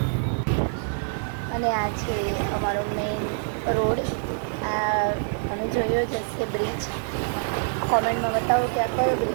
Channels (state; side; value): silent; left; digital silence